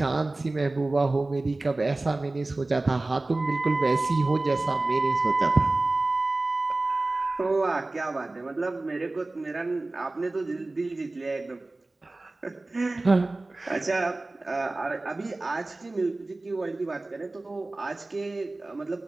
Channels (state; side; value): quieter; left; 3.0 dB